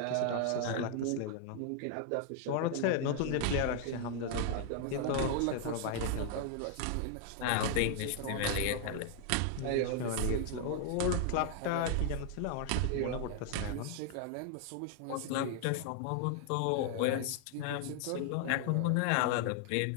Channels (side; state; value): both; different; correlation 0.00